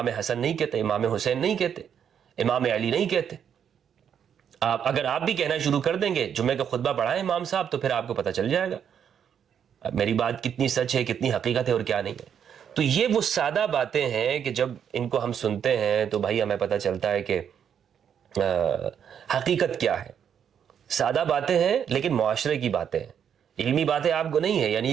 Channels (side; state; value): left; quieter; 8.3 dB